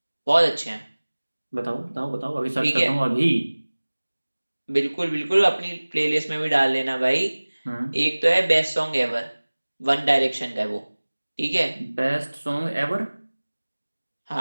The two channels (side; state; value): both; inverted; correlation -1.00